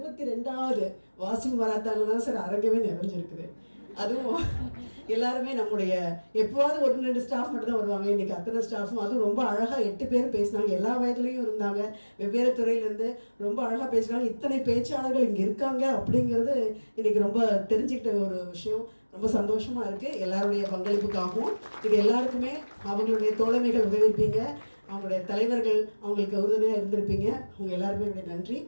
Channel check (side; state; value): both; inverted; correlation -1.00